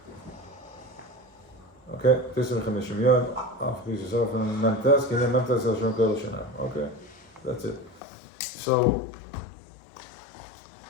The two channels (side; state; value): right; drops out; at 8.0 s